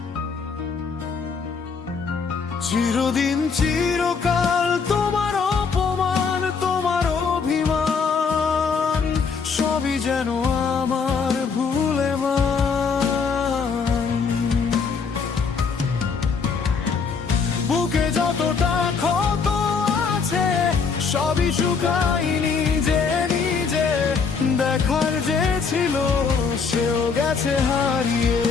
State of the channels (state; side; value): quieter; right; 5.5 dB